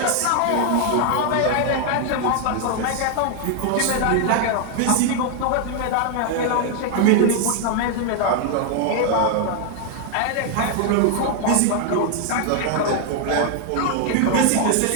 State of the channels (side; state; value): both; different; correlation 0.00